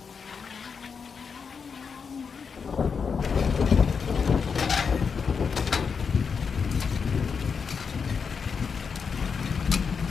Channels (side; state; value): right; quieter; 5.9 dB